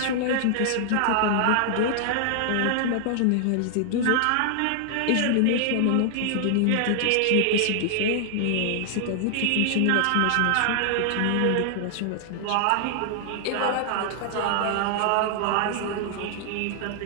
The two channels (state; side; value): different; both; correlation 0.00